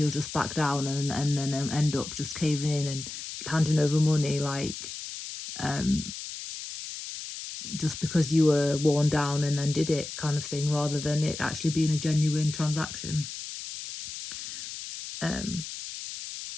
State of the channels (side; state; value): left; noise; hiss, 9 dB below the sound